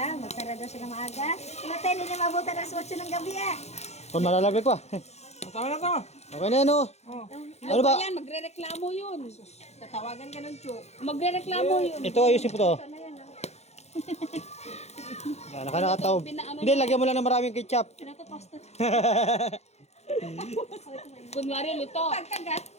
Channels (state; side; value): late; right; 0.31 ms